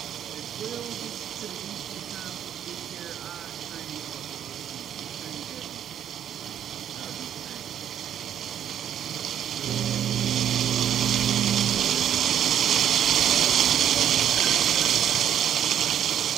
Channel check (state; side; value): quieter; left; 9.8 dB